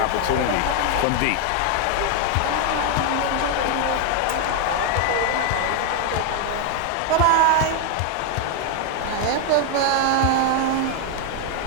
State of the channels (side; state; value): both; different; correlation 0.01